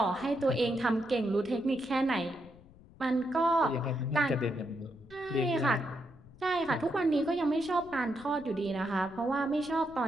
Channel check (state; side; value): noise; left; rumble, 23 dB below the sound